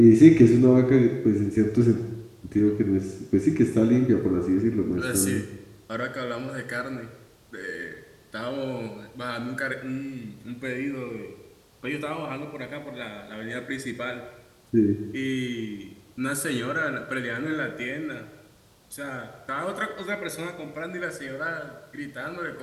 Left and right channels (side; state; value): both; identical; correlation 1.00